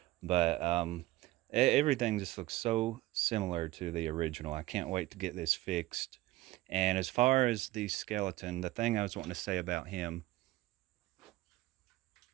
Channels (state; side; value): quieter; left; 17.5 dB